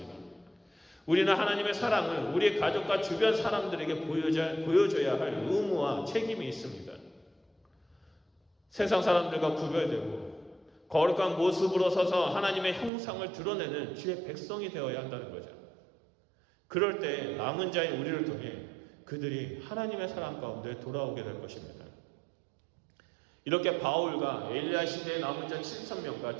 우리는 하나님의 사랑을 우리 가족과 주변 사람들에게 보여줘야 할 의무와 책임이 있습니다. 세상 사람들과 구별되고 거룩한 모습으로 서서 하나님의 형상을 드러내는 주의 백성이 되어야 한다는 거죠. 그럴 때 남은 자인 우리를 통해 그들이 하나님의 사랑 가운데 돌아오게 될 것입니다. 이렇게 바울과 엘리야 시대의 남은 자 7,000명과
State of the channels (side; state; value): left; drops out; at 12.9 s